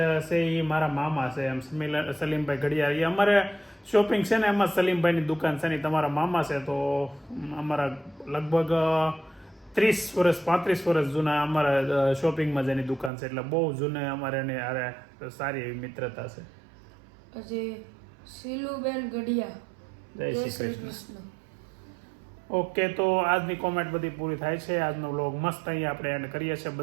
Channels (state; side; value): drops out; left; at 13.1 s